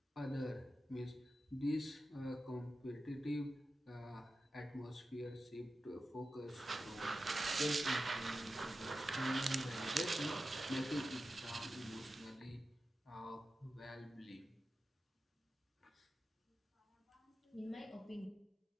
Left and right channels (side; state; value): both; normal; correlation 0.92